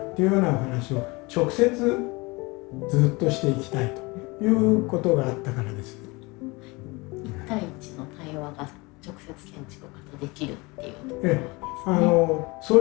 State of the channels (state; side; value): quieter; right; 25.2 dB